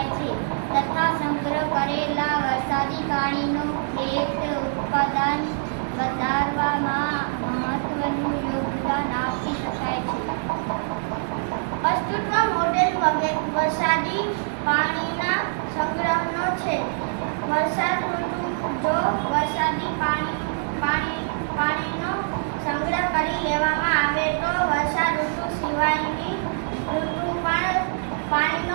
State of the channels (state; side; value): silent; left; digital silence